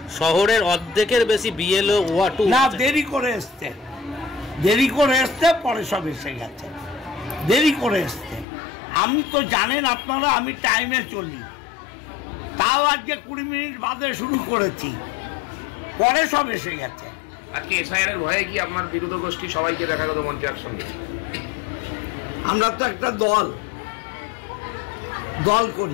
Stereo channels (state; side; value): drops out; right; at 8.5 s